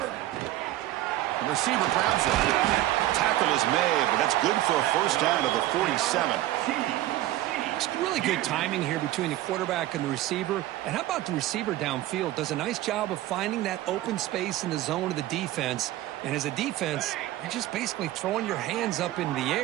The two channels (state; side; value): quieter; left; 15.1 dB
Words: The receiver grabs it. Tackle is made, but that's good for a first down to the 47. It's really good timing here between the quarterback and the receiver. And how about the receiver downfield? Does a nice job of finding that open space in the zone of the defense. And as a defense, you're just basically throwing your hands up in the